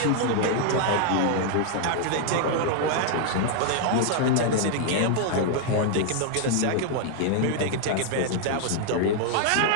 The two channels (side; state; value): both; different; correlation -0.01